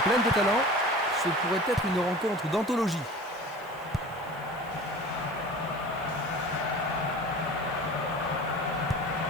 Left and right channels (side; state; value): left; noise; hiss, 26 dB below the sound